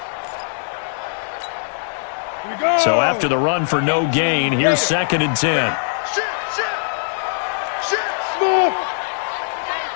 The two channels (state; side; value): silent; right; digital silence